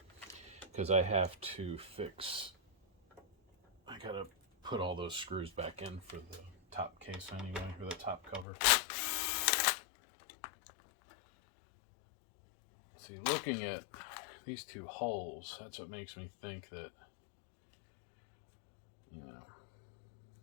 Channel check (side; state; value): right; drops out; at 8.5 s